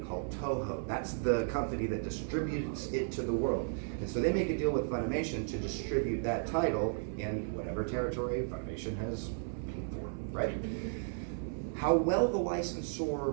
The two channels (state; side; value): silent; left; 55 dB below the other